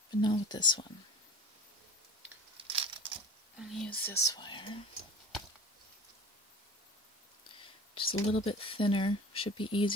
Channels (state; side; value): normal; both; correlation 0.38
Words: but not with this one. I'm going to use this wire. Just a little bit thinner, should be